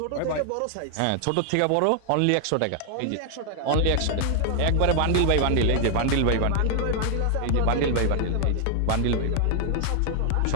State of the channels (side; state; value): both; different; correlation 0.00